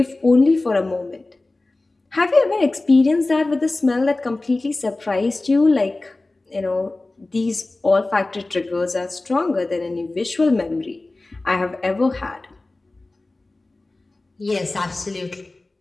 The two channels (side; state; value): right; quieter; 3.0 dB